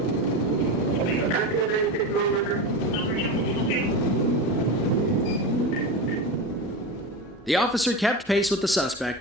The officer kept pace with the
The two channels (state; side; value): normal; both; correlation 0.23